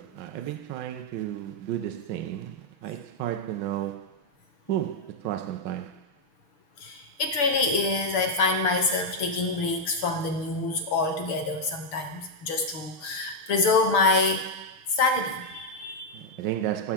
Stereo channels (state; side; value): late; right; 6.9 ms